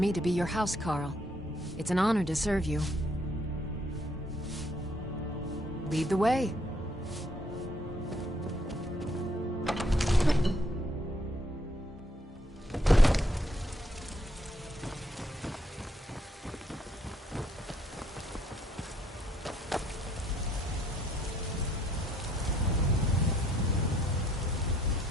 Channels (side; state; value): both; normal; correlation 0.69